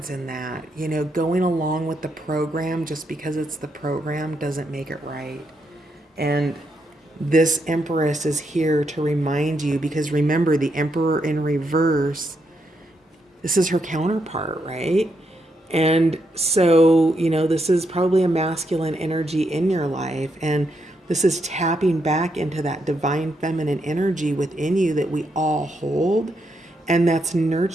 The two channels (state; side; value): normal; both; correlation 0.80